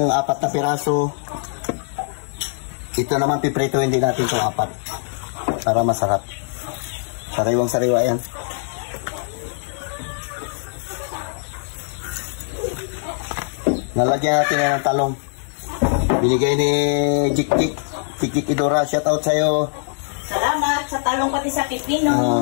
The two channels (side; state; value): right; silent; 63 dB below the other